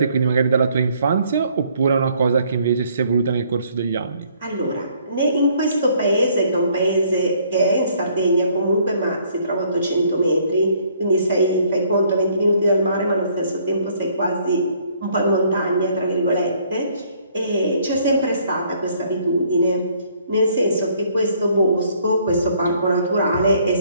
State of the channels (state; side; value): inverted; both; correlation -0.64